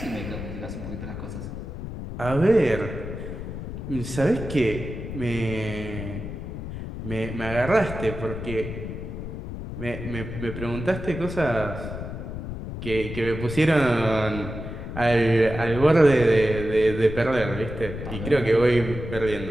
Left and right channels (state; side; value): noise; left; rumble, 8 dB below the sound